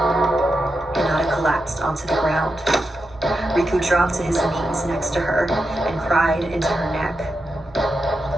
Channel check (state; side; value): normal; both; correlation 0.87